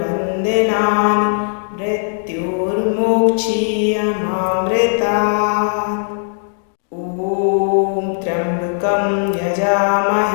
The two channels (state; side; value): silent; right; digital silence